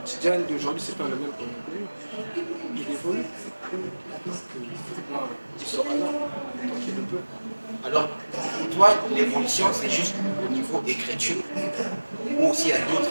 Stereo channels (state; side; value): inverted; both; correlation -1.00